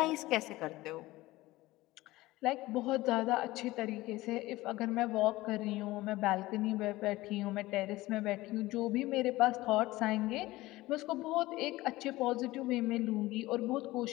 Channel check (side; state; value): right; quieter; 18.5 dB